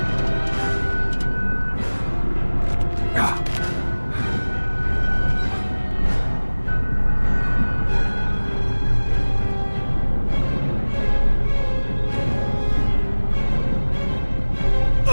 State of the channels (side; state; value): both; inverted; correlation -1.00